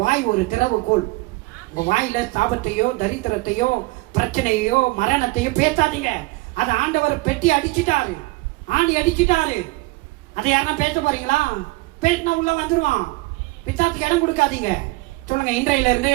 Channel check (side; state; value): left; quieter; 22.8 dB